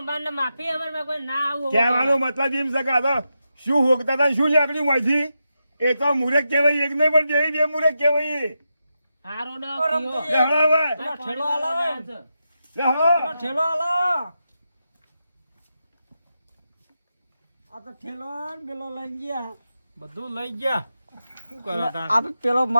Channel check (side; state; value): both; inverted; correlation -0.87